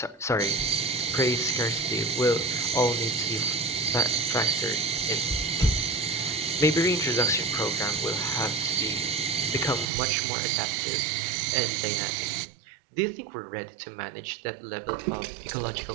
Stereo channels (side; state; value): left; drops out; at 9.9 s